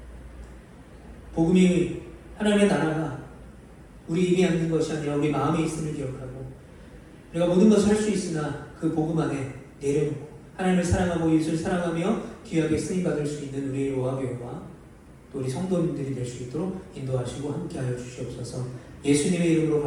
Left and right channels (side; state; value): both; identical; correlation 1.00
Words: 복음이 하나님의 나라가 우리 입에 앉는 것이 아니라 우리 마음에 있음을 기억하고 우리가 모든 것을 할 수 있으나 그 복음 안에 내려놓고 하나님을 사랑하고 이웃을 사랑하며 귀하게 쓰임받을 수 있는 우리 로아교회와 또 우리 성도님들이 될 수 있도록 인도하시고 함께하여 주시옵소서. 예수님의 이름으로